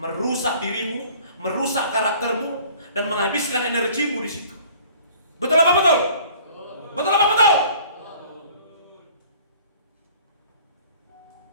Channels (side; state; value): both; inverted; correlation -0.51